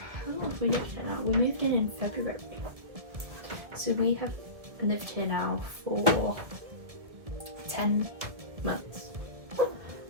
long have we lived here now? We moved in February. So we have lived here now for 10 months.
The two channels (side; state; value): left; late; 1.6 ms